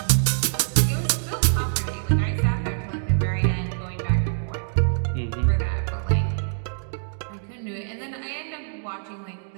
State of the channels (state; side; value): silent; left; digital silence